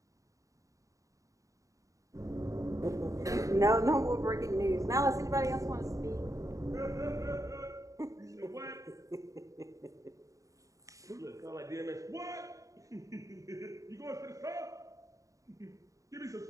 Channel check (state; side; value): late; left; 0.16 ms